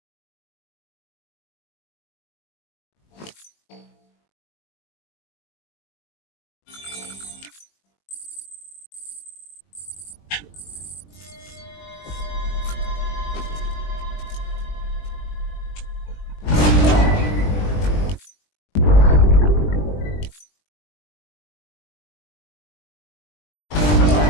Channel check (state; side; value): late; right; 20 ms